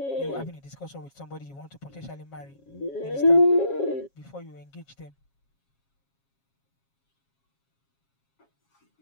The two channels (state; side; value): late; right; 7.3 ms